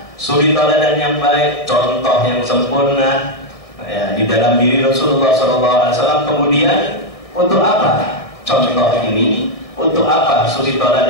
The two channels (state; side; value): late; right; 1.6 ms